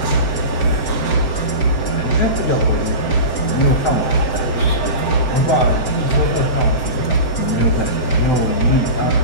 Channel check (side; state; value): right; late; 7.8 ms